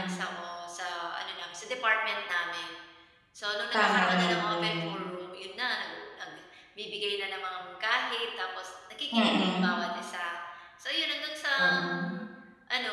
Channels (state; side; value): identical; both; correlation 1.00